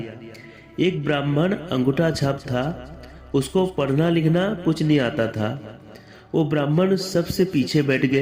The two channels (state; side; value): identical; both; correlation 1.00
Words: एक ब्राह्मण अंगूठा छाप था, उसको पढ़ना लिखना कुछ नहीं आता था। वो ब्राह्मण सबसे पीछे बैठ